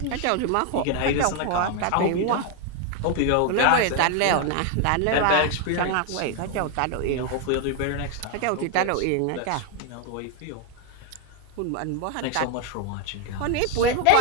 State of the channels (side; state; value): both; different; correlation 0.00